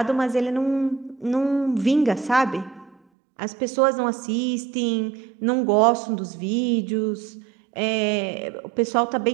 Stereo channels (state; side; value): drops out; left; at 3.0 s